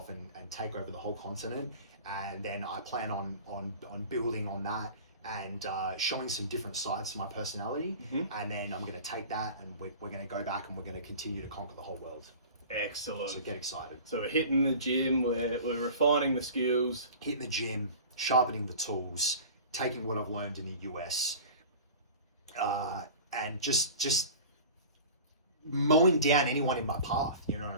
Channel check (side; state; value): both; inverted; correlation -0.39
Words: and take over the whole continent. And then I plan on building on that and showing some different sides to my personality. Mm-hmm. And then I'm going to take that and we're going to go back and we're going to continue to conquer the whole world. Excellent. So get excited. So we're hitting the gym, we're refining the skills. Hitting the gym, sharpening the tools, taking what I've learned in the US, and just mowing down anyone in my path, you know what I